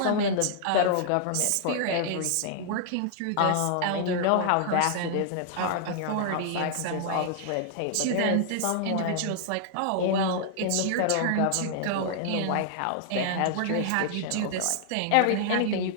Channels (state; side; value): different; both; correlation -0.01